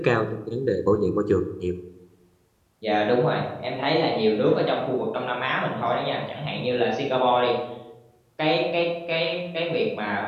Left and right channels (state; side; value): identical; both; correlation 1.00